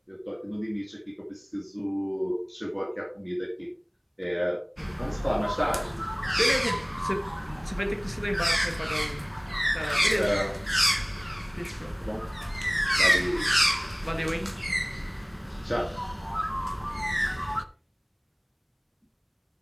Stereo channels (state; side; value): identical; both; correlation 1.00